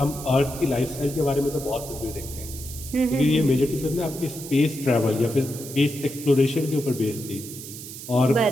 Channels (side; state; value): right; noise; hiss, 12 dB below the sound